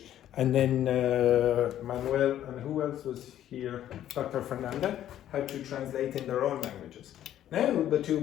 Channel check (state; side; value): quieter; right; 11.7 dB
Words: and then Manuel and who else was here? Dr. Fernanda had to translate in their own languages. Now the two